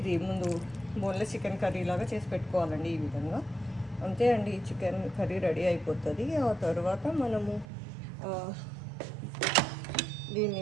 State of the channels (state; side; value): drops out; left; at 7.7 s